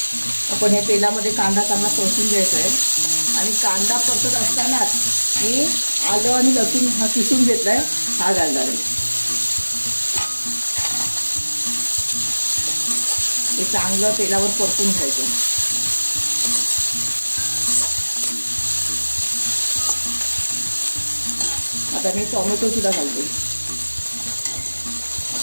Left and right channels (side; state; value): both; inverted; correlation -1.00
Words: आपण हे तेलामध्ये कांदा चांगला परतून घ्यायचा आहे आणि कांदा परतत असतानाच मी आलं आणि लसूण हा किसून घेतलाय हा घालणार आहे। हे चांगलं तेलावर परतून घ्यायचं। आता मी टोमॅटो सुद्धा घालते।